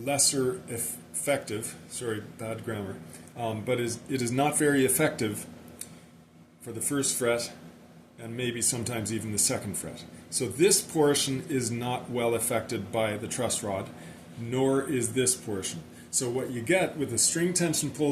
effective, sorry, bad grammar, but it is not very effective for the first fret and maybe sometimes even the second fret. So this portion is not well affected by the truss rod, nor is this portion. So what you get with the string tension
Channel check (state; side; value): identical; both; correlation 1.00